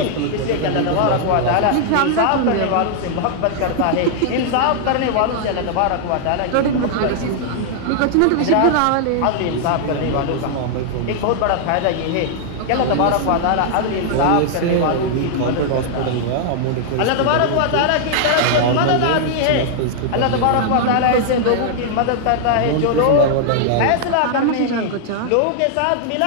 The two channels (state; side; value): different; both; correlation -0.01